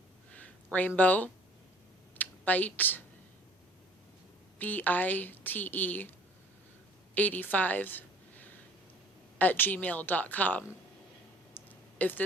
rainbow bite BITE 85 @gmail.com. If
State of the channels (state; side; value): normal; both; correlation 0.52